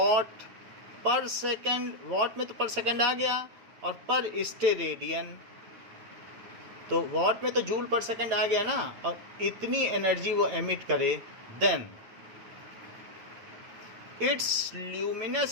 पर second. What में तो पर सेकेंड आ गया और पर स्टेरेडियन तो वॉट में तो जूल पर सेकेंड आ गया ना, और इतनी एनर्जी वो एमिट करे, then its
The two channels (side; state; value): left; late; 8.9 ms